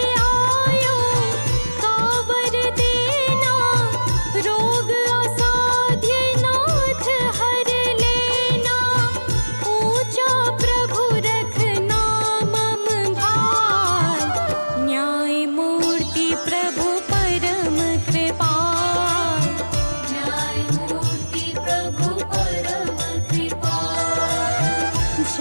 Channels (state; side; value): inverted; both; correlation -1.00